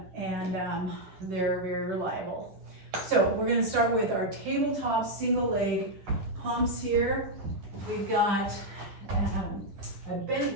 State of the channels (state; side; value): late; left; 10 ms